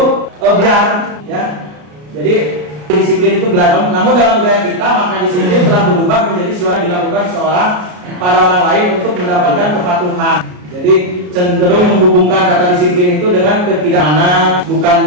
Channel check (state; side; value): late; left; 33 ms